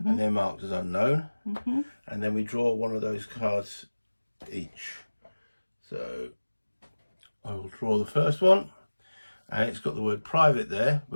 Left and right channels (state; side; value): inverted; both; correlation -1.00